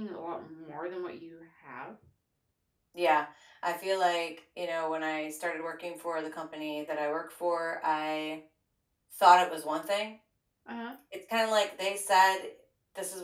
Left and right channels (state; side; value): identical; both; correlation 1.00